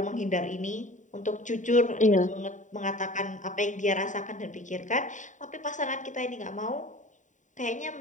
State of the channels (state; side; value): late; right; 0.36 ms